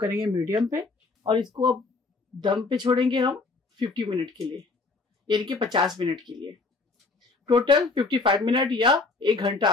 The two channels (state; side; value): quieter; right; 3.8 dB